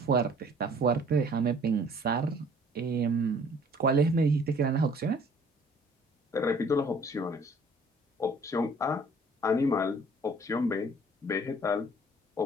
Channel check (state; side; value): normal; both; correlation 0.55